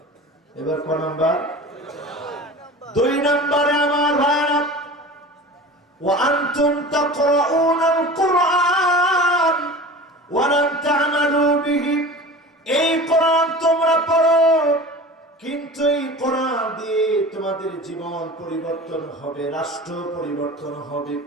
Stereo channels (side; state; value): both; normal; correlation 0.36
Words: এবার কোন নাম্বার? 2 নম্বরে আমার ভাইরা, ওয়া আনতুম তাকরাউনাল কুরআন ওয়া লাম তা'মালু বিহি। এই কোরআন তোমরা পড়ো, কিন্তু এই কোরআন দিয়ে তোমাদের জীবন পরিবর্তন হবে, রাষ্ট্র পরিবর্তন হবে।